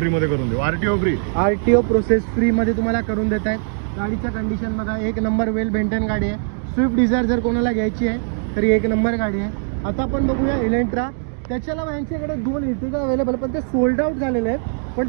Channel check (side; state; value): left; silent; digital silence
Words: मध्ये करून देऊ, RTO free. RTO process free मध्ये तुम्हाला करून देत आहेत. गाडीचं कंडिशन बघा, एक नंबर वेल मेंटेन गाडी आहे. स्विफ्ट डिझायर जर कोणाला घ्यायची आहे तरी एक नंबर गाडी आहे. आता आपण बघूया इलेंट्रा. त्याच्याला यांच्याकडे 2 इर्टिगा अवेलेबल, पण ते सोल्ड आउट झालेले आहेत. पण